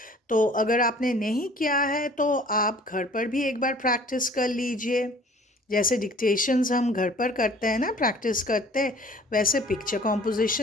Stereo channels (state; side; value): normal; both; correlation 0.51